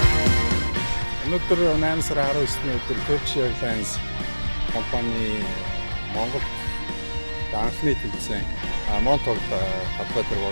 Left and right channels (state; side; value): inverted; both; correlation -1.00